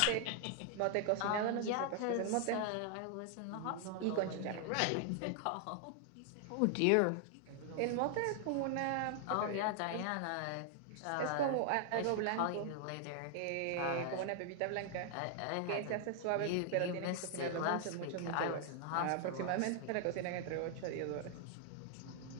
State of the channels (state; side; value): different; both; correlation 0.00